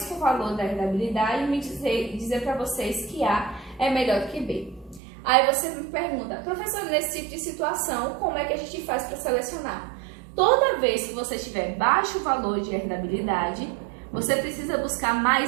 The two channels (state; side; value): drops out; left; at 5.0 s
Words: com o valor da herdabilidade, me dizer para vocês que A é melhor do que B. Aí você me pergunta, professor, nesse tipo de situação, como é que a gente faz para selecionar? Toda vez que você tiver baixo valor de herdabilidade, você precisa buscar